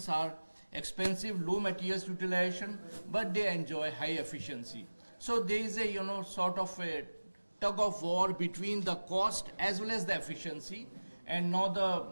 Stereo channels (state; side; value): inverted; both; correlation -1.00